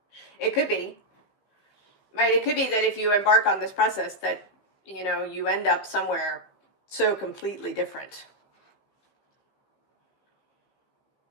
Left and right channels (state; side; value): late; right; 15 ms